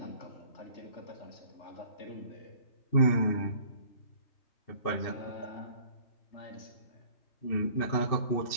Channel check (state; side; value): late; right; 2.7 ms